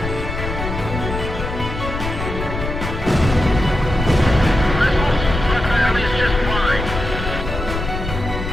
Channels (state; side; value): noise; left; rumble, 5 dB below the sound